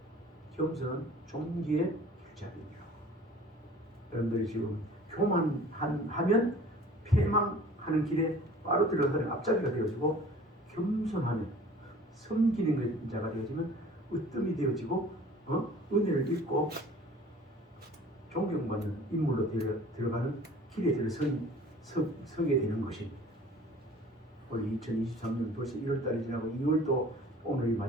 겸손은 종기의 길잡이니라. 여러분들이 지금 교만하면 패망하는 길에 바로 들어가는 앞자리가 되어지고 겸손하면 섬기는 자가 되어지면 으뜸이 되어지고 은혜를 입고 존경받는 인물로 들어가는 길에 서게 되는 것입니다. 올 2023년 벌써 1월달이 지나고 2월도 오늘이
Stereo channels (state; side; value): normal; both; correlation 0.47